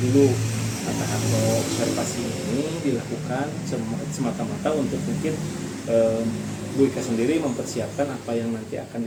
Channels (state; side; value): identical; both; correlation 1.00